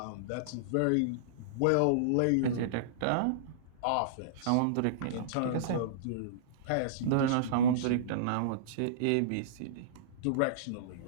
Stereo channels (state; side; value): different; both; correlation -0.03